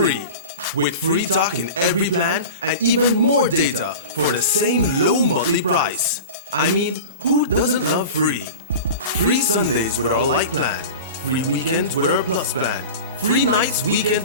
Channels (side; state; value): both; inverted; correlation -0.33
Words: With free talk in every plan and even more data for the same low monthly price. I mean, who doesn't love free? Free Sundays with our light plan, free weekends with our Plus plan, free nights,